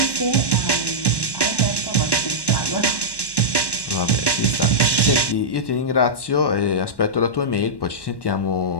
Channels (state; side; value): late; right; 1.1 ms